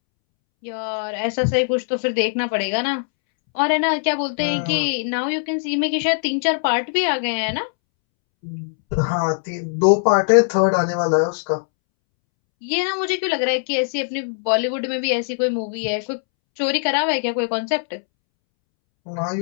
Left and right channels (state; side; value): silent; right; 65 dB below the other